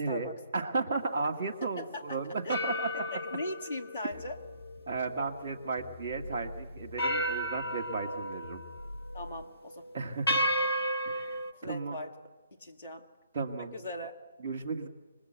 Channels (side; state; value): both; inverted; correlation -0.63